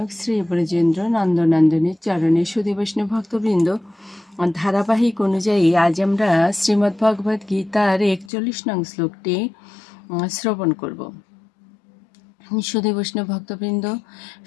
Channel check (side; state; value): right; drops out; at 8.3 s